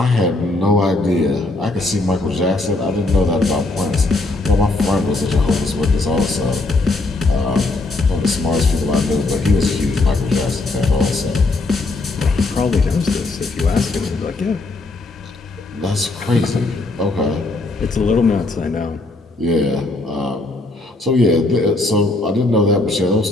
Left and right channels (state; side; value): quieter; right; 3.1 dB